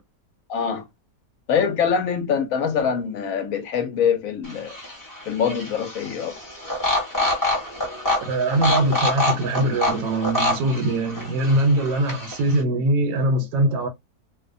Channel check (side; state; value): both; normal; correlation -0.05